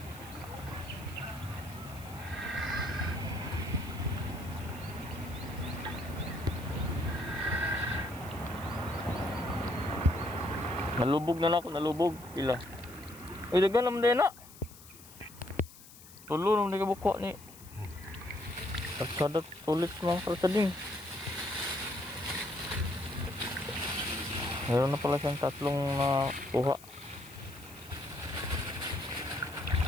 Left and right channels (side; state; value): left; noise; hiss, 19 dB below the sound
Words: Nalubog na lang ako, nalubog. Pila. Uy, dagan naman din na. Tulo naman di ka buko ni. Pagsadat tulit mga kalsading. Meron na pala siyang tatlong kuha.